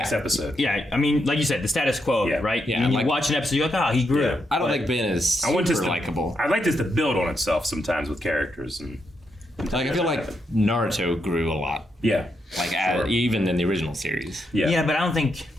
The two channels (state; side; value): normal; both; correlation 0.81